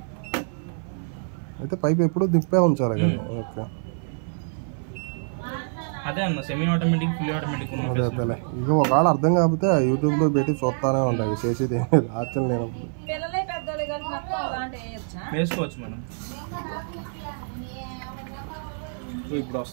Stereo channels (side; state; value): left; silent; 56 dB below the other